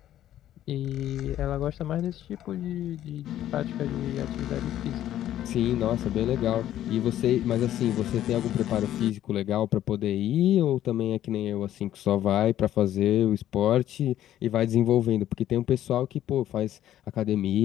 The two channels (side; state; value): right; quieter; 12.2 dB